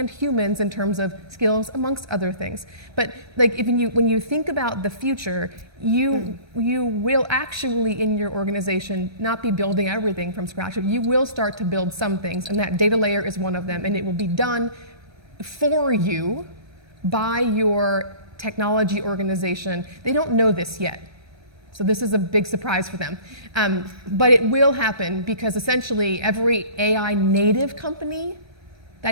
humans in terms of skills amongst other things. But like when you think about the future, you will actually in your organization not be building everything from scratch. You will start to build some things, and that data layer is one of them, and it will be done for you by your technology organization. They don't know this yet. So this is a big surprise for them. But it will happen because essentially every AI native company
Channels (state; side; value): late; left; 1.3 ms